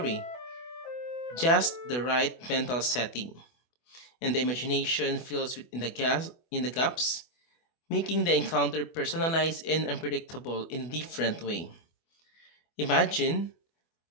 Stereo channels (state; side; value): late; right; 24 ms